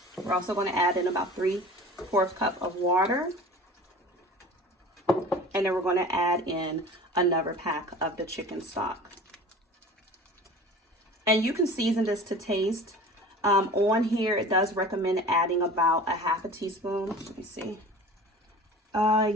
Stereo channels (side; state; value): both; normal; correlation 0.40